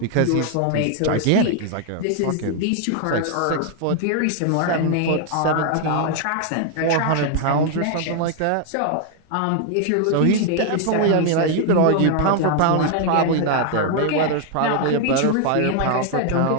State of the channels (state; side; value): different; both; correlation 0.00